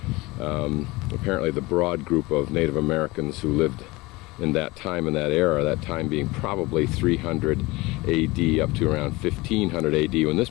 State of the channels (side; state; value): right; quieter; 22.1 dB